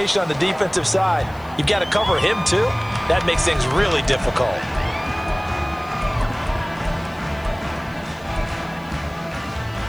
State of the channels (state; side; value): noise; left; hiss, 26 dB below the sound